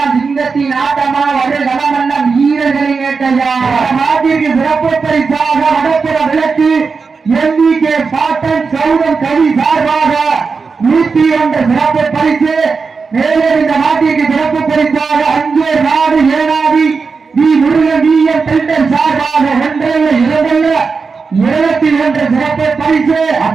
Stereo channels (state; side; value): quieter; left; 4.9 dB